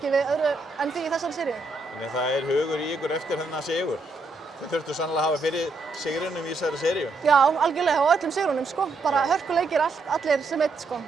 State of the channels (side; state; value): left; quieter; 3.4 dB